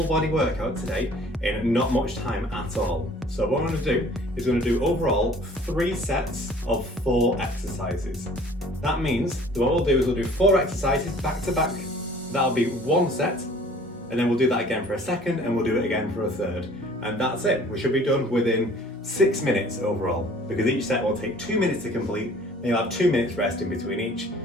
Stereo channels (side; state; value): both; normal; correlation 0.51